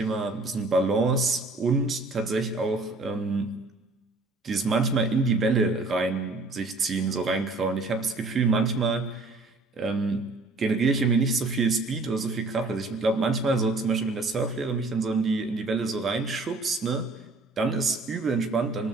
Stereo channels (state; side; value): quieter; left; 3.3 dB